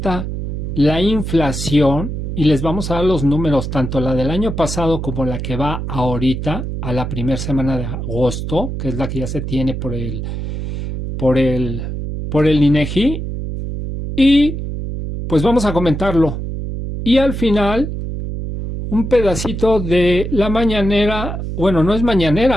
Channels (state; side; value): noise; right; hum, 5 dB below the sound